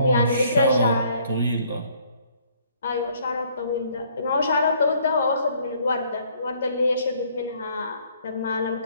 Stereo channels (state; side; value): inverted; both; correlation -0.63